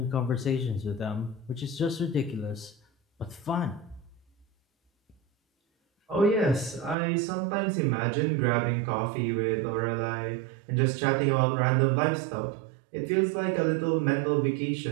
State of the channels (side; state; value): left; drops out; at 7.0 s